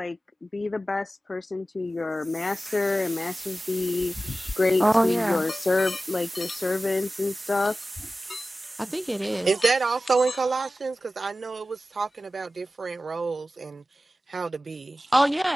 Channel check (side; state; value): both; normal; correlation 0.95